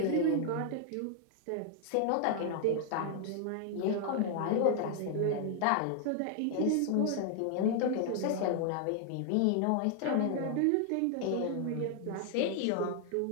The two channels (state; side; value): different; both; correlation 0.00